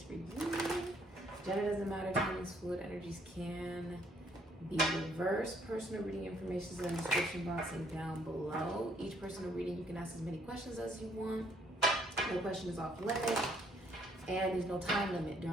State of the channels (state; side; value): normal; both; correlation 0.66